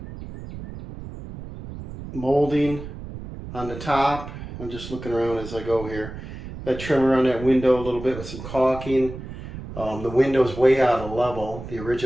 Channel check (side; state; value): right; noise; rumble, 11 dB below the sound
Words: molding on the top. I'm just looking around as I go here. Got trim around that window a little bit with some caulking. The window's way out of level, the